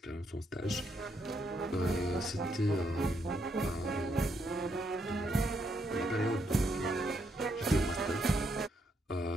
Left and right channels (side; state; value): both; normal; correlation 0.76